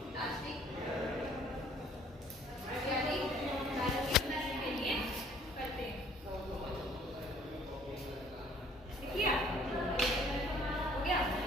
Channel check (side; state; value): both; normal; correlation 0.58